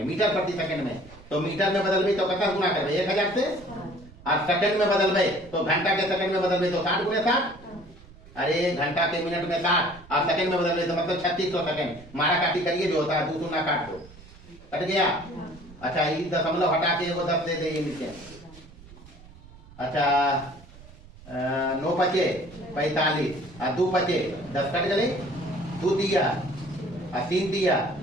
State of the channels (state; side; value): noise; right; rumble, 21 dB below the sound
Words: मीटर प्रति सेकंड में। तो मीटर में बदलबे तो कितना गुना करबे 1000 से और सेकंड में बदलबे तो घंटा के सेकंड में बदलबे तो 60 गुने 60। अरे घंटा के मिनट में 60 और सेकंड में बदलबे तो मतलब 3600 सेकंड। मारा काटी करिए जो होता है 2 शून्य काट दो कट गया। अच्छा ये दशमलव हटा के वो 10 दे दे नीचे। अच्छा 9 पचे 45 और 2 पचे 10 कट गए 2 दिया और 3 दिया